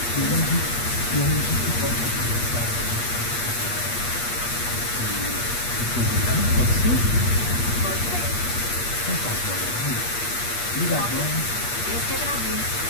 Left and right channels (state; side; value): late; right; 8.4 ms